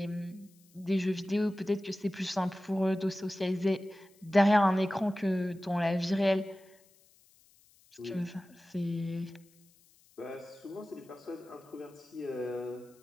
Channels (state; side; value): noise; left; hiss, 30 dB below the sound